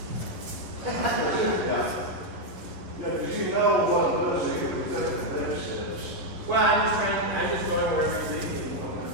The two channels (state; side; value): late; left; 11 ms